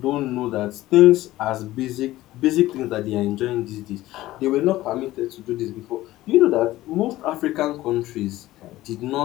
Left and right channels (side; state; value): right; quieter; 16.3 dB